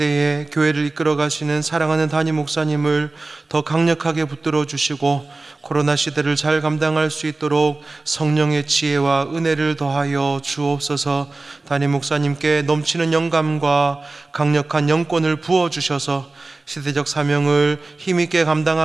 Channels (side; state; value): left; quieter; 3.3 dB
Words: 교회를 이끌어 가시는 사랑하는 담임 목사님을 더 강력하게 붙들어 주시고 코로나 시대를 잘 감당할 수 있도록 성령의 지혜와 은혜를 더하여 주옵소서. 담임 목사님께 넘치는 영감과 강력한 영권을 부어주셔서 시대적 사명을 힘있게